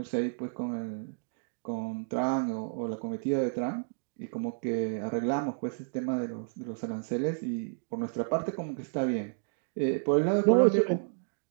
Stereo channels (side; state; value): left; silent; digital silence